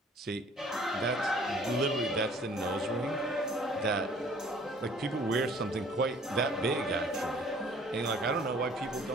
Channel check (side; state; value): both; normal; correlation 0.54